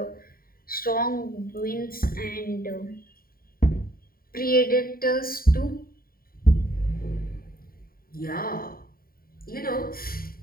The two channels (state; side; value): late; right; 0.43 ms